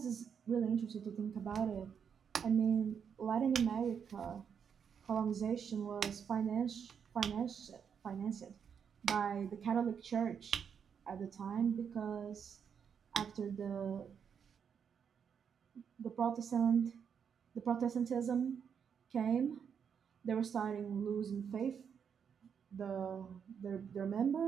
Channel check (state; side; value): quieter; left; 7.2 dB